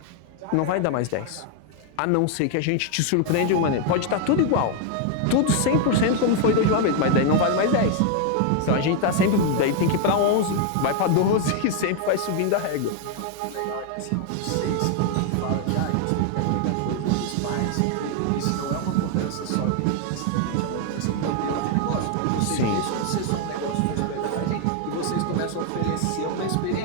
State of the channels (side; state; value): both; different; correlation 0.00